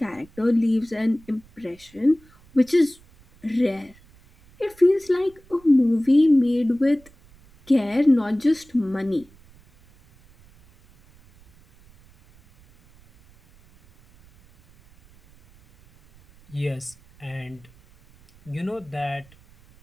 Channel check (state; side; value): noise; right; rumble, 28 dB below the sound